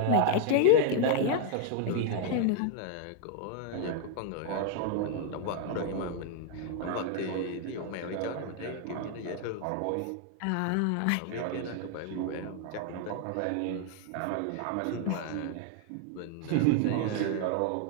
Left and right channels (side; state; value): both; different; correlation 0.00